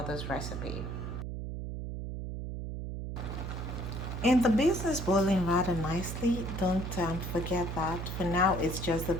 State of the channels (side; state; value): right; noise; hum, 5 dB below the sound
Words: recipe. And the beans is boiling rather nicely. Don't forget that. For now, it's just the